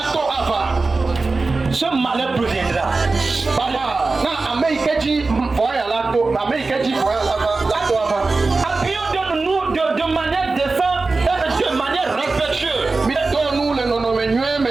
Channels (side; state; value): left; quieter; 3.7 dB